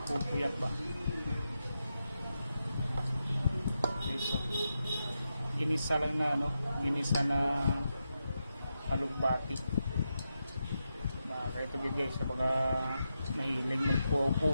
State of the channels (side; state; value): both; inverted; correlation -0.87